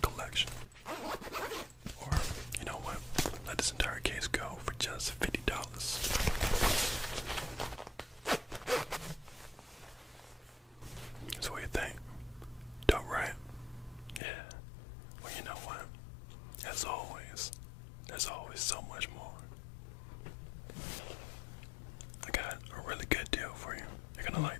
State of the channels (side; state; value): right; drops out; at 14.2 s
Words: collection. Or, you know what? Let this entire case go for just $50. So what do you think? Dope, right? Yeah. Well, you know what? As always, there's always so much more. I got a really good deal for you. You're gonna